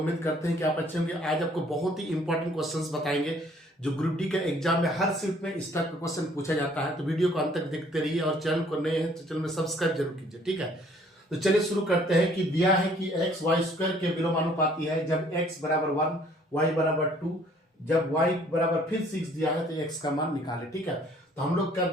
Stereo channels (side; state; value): both; normal; correlation 0.59